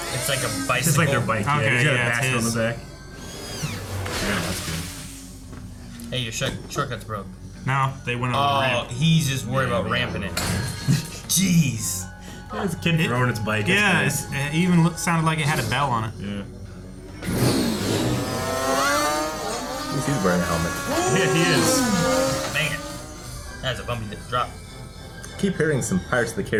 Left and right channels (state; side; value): identical; both; correlation 1.00